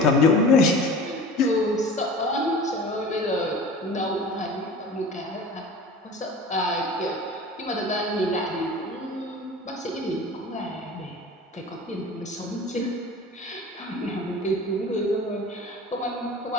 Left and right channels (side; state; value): both; normal; correlation 0.38